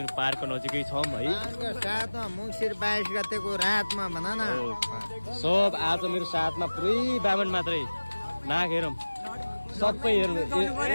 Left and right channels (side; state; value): both; inverted; correlation -1.00